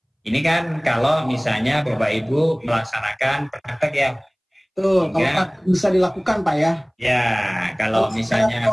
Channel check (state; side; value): identical; both; correlation 1.00